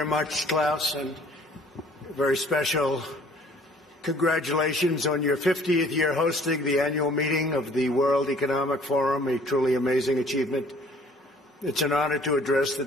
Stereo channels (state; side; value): normal; both; correlation 0.56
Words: much, Klaus, and a very special congratulations on your 50th year hosting the annual meeting of the World Economic Forum, a truly amazing achievement. It's an honor to address the